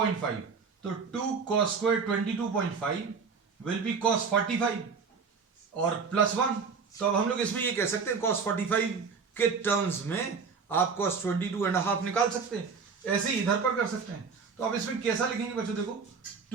तो 2 cos square 22.5 will be cos 45 और प्लस 1. तो अब हम लोग इसमें ये कह सकते हैं cos 45 के टर्म्स में आप cos 22.5 निकाल सकते हैं. ऐसे ही इधर पर कर सकते हैं. तो अब इसमें कैसा लिखेंगे बच्चों. देखो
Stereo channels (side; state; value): left; quieter; 5.4 dB